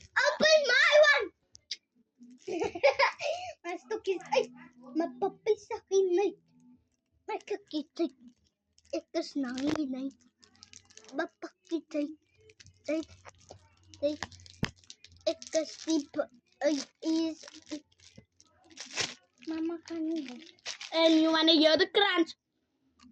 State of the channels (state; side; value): identical; both; correlation 1.00